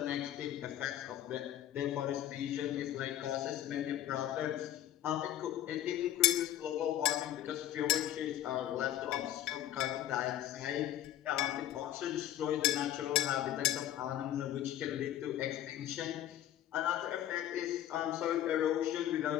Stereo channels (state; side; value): quieter; right; 12.2 dB